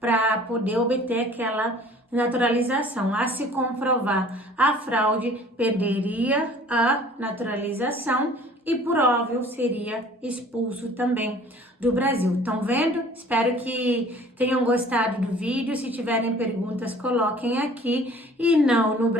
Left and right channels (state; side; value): normal; both; correlation 0.50